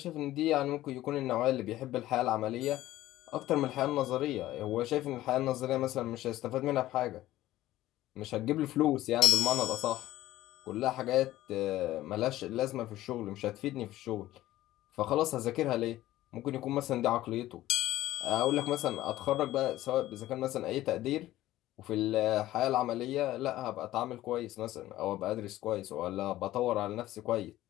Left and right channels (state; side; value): quieter; right; 15.2 dB